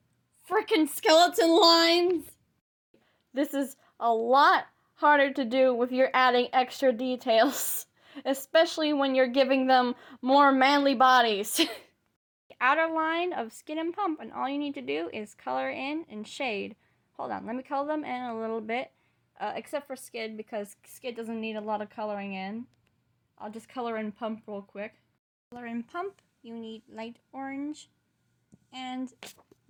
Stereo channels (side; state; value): both; identical; correlation 1.00